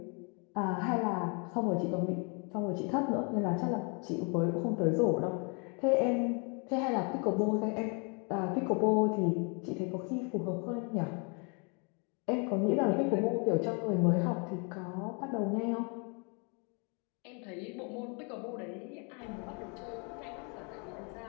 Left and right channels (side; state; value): right; quieter; 35.3 dB